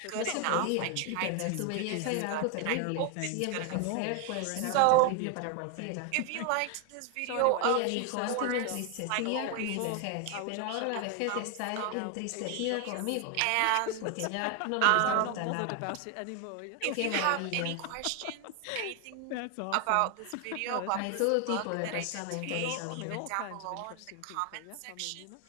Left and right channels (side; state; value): both; different; correlation 0.01